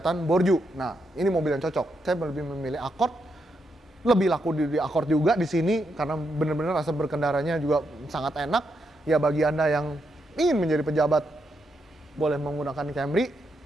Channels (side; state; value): both; normal; correlation 0.81